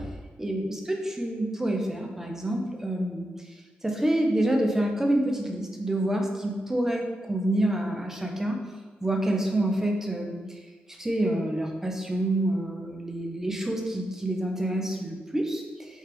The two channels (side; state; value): both; normal; correlation 0.87